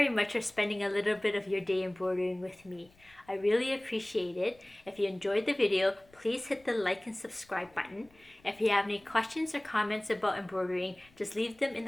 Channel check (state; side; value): noise; left; rumble, 29 dB below the sound